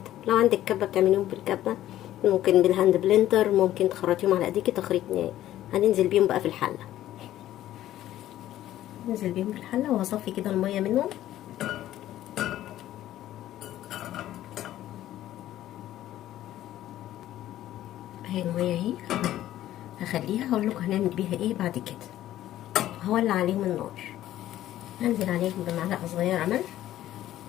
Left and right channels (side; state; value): right; quieter; 13.3 dB